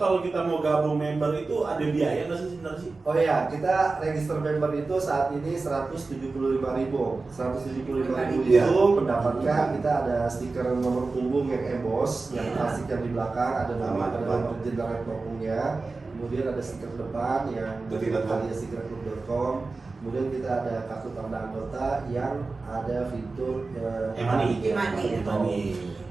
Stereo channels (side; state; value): left; quieter; 3.8 dB